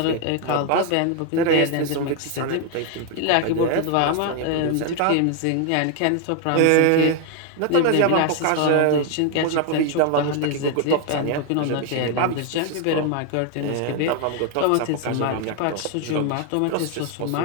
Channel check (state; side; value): different; both; correlation 0.01